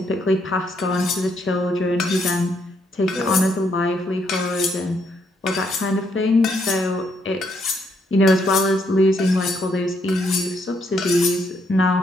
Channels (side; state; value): both; normal; correlation 0.74